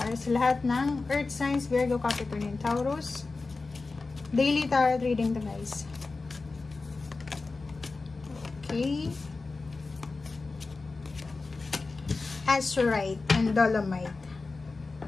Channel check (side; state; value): right; quieter; 3.8 dB